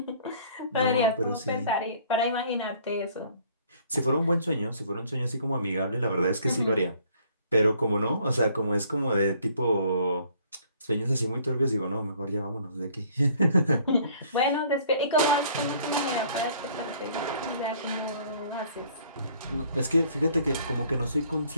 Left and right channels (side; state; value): both; inverted; correlation -0.59